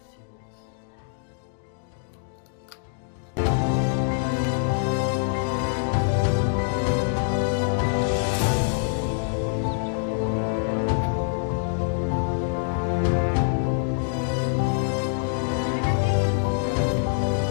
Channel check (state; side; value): silent; right; digital silence